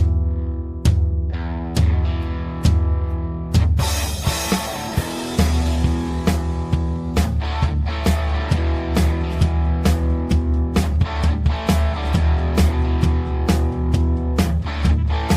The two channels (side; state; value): both; identical; correlation 1.00